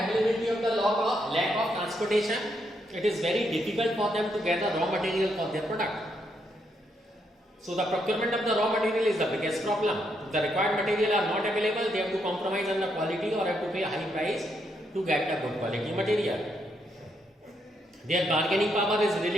of the lack of transportation, it is very difficult for them to gather raw material for their product. So the procurement of the raw material is the biggest problem. If the required material are not available, they have to compromise on the quality or have to pay a high price to get the good quality material. Their bargaining power is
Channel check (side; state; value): both; normal; correlation 0.77